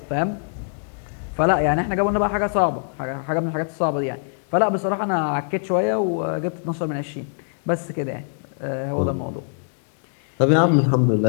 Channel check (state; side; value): silent; right; digital silence